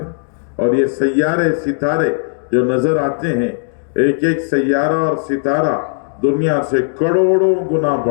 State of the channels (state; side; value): silent; right; digital silence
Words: اور یہ سیارے ستارے جو نظر آتے ہیں، ایک ایک سیارہ اور ستارہ دنیا سے کروڑوں گنا